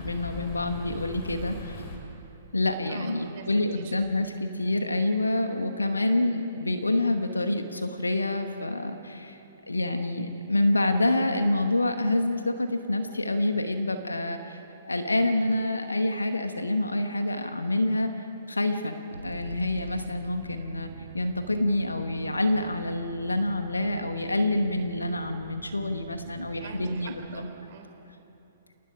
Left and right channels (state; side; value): inverted; both; correlation -0.88